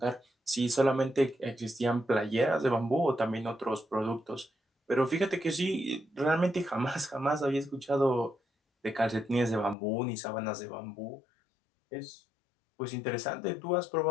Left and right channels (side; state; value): right; drops out; at 9.8 s